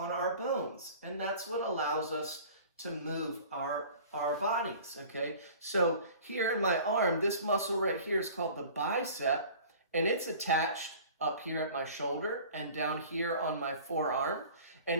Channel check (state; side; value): inverted; both; correlation -0.44